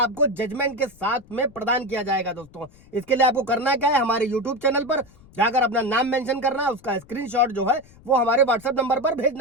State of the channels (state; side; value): noise; left; rumble, 25 dB below the sound